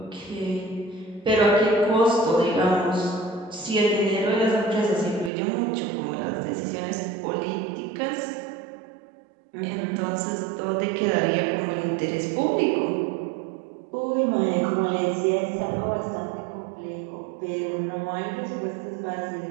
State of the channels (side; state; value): left; drops out; at 5.3 s